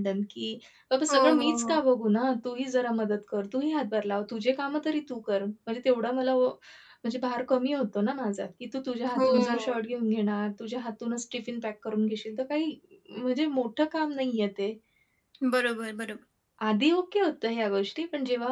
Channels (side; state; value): both; identical; correlation 1.00